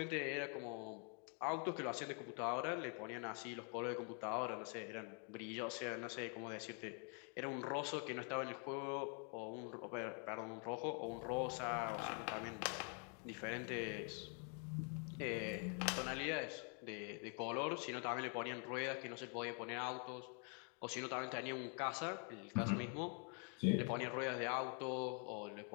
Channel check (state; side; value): quieter; right; 40.0 dB